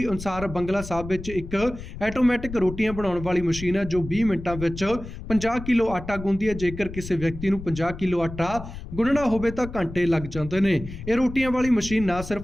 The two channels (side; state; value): left; noise; rumble, 11 dB below the sound